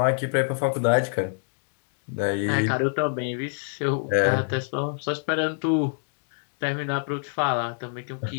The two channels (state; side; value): silent; right; 61 dB below the other